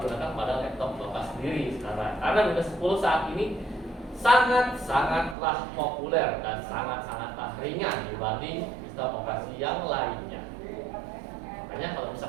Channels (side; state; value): left; drops out; at 5.4 s